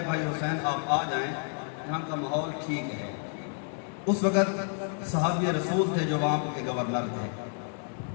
بھائی حسین آپ آ جائیں، یہاں کا ماحول ٹھیک ہے۔ اس وقت صحابی رسول تھے جو وہاں کے گورنر تھے۔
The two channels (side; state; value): right; silent; 58 dB below the other